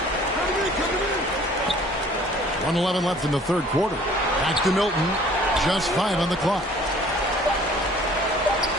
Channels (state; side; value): normal; both; correlation 0.53